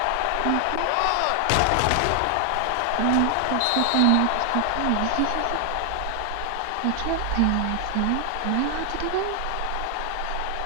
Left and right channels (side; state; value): both; different; correlation 0.00